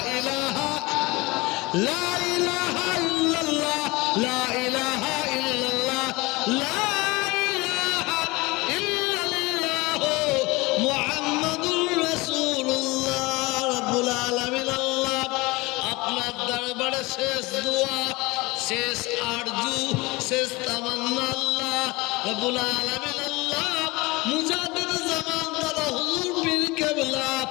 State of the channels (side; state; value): right; quieter; 23.1 dB